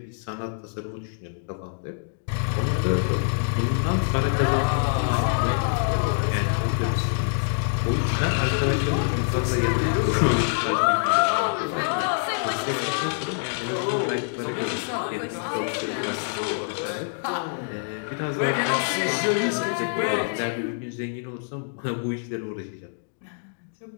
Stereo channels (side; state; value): right; silent; digital silence